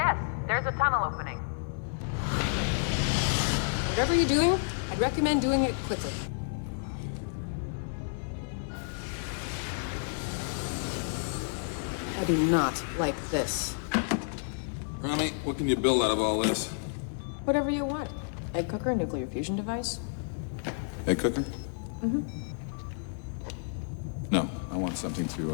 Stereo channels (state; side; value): silent; right; 57 dB below the other